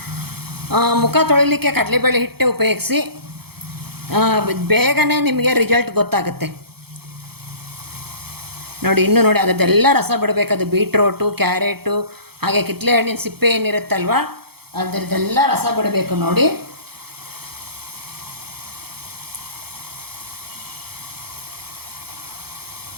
ಮುಖ ತೊಳಿಲಿಕ್ಕೆ ಕಡಲೆಬೇಳೆ ಹಿಟ್ಟೆ ಉಪಯೋಗಿಸಿ. ಬೇಗನೆ ನಿಮಗೆ ರಿಸಲ್ಟ್ ಗೊತ್ತಾಗುತ್ತೆ. ನೋಡಿ, ಇನ್ನೂ ನೋಡಿ, ಅದರದ್ದೆಲ್ಲ ರಸ ಬಿಡಬೇಕದು. ಬೀಟ್ರೋಟು, ಕ್ಯಾರೆಟು, ಹಾಗೆ ಕಿತ್ತಳೆ ಹಣ್ಣಿನ ಸಿಪ್ಪೆ ಏನಿರುತ್ತಲ್ವ, ಅದರದ್ದೆಲ್ಲ ರಸ ಬಿಡಬೇಕು ನೋಡಿ.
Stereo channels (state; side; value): late; left; 0.96 ms